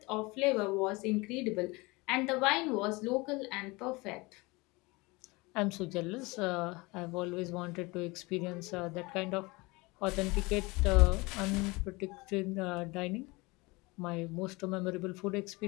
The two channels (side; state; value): right; quieter; 24.3 dB